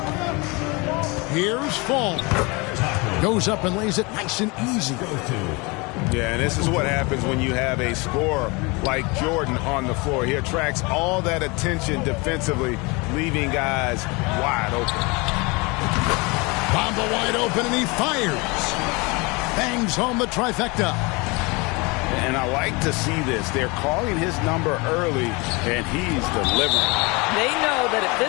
Here's Fall. Goes up and lays it nice and easy. Yeah, and this is what happens when you have a scorer like Jordan on the floor. He attracts all that attention defensively, leaving guys wide open. Bamba wide open, and he fires. Bangs home the trifecta. And I like to see this. They're calling his number early, and he's delivering. They know that if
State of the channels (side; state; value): right; quieter; 27.0 dB